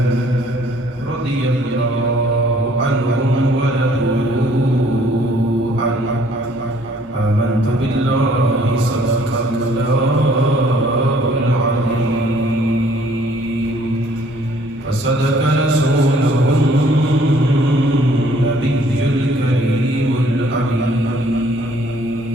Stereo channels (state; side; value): normal; both; correlation 0.60